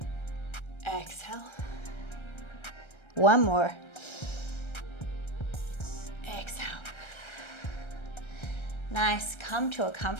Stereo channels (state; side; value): late; right; 1.3 ms